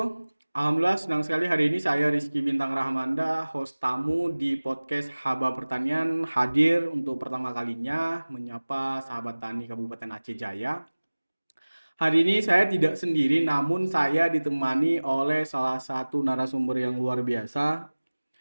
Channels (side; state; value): both; inverted; correlation -1.00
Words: Alhamdulillah senang sekali hari ini saya Rizky Bintang Rahmanda, host tamu di podcast Haba Pertanian hadir untuk pertama kalinya menyapa sahabat tani Kabupaten Aceh Jaya. Hari ini saya tidak sendiri namun saya ditemani oleh salah satu narasumber yang luar biasa